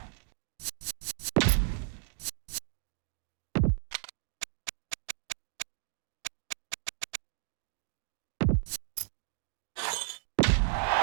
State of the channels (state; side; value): silent; left; digital silence